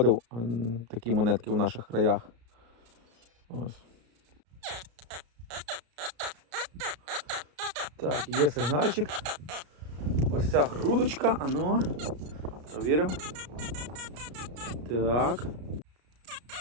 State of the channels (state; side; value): late; left; 33 ms